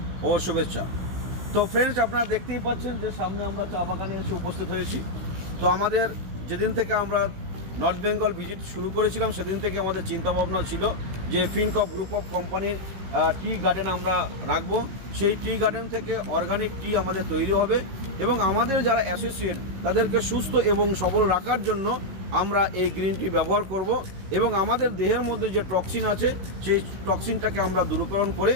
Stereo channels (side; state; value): left; late; 16 ms